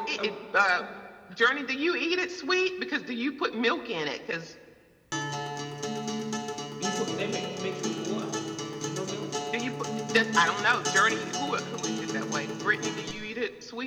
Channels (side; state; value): both; identical; correlation 1.00